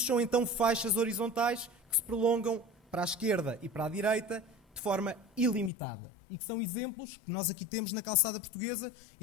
são então faixas horizontais que se prolongam para a esquerda e para a direita de forma ilimitada. E que são exemplos que nós aqui temos na calçada portuguesa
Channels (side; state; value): right; drops out; at 5.7 s